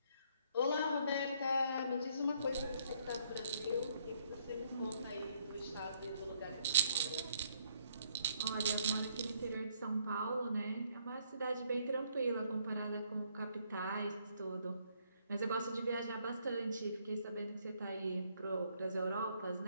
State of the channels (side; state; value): both; inverted; correlation -0.68